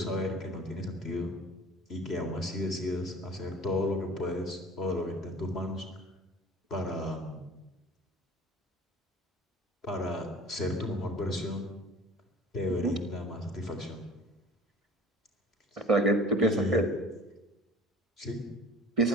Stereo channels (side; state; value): both; normal; correlation 0.44